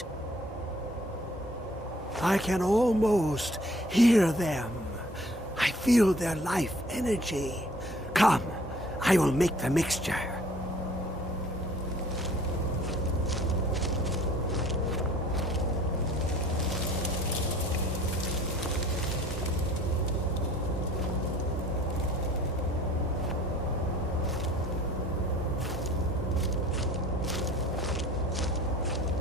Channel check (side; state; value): both; normal; correlation 0.53